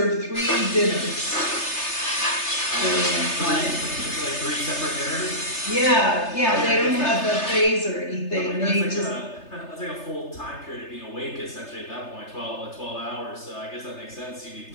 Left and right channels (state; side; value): late; right; 3.3 ms